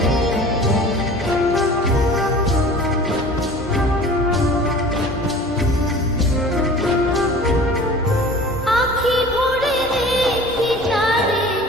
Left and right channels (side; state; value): both; normal; correlation 0.42